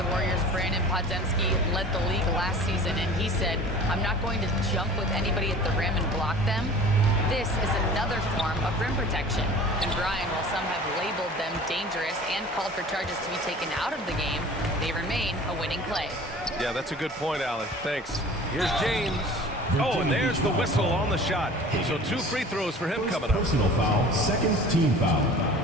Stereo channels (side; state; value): both; normal; correlation 0.43